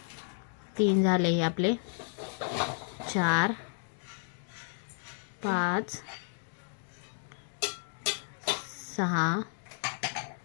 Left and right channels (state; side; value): silent; right; digital silence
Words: 3 झाले हे आपले, 4 5 6